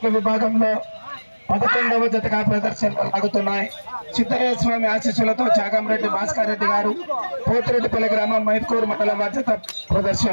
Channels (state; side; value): inverted; both; correlation -1.00